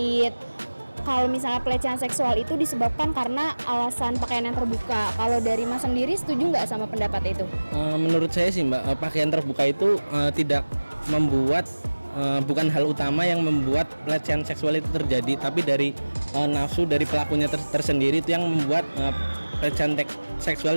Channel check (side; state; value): both; inverted; correlation -1.00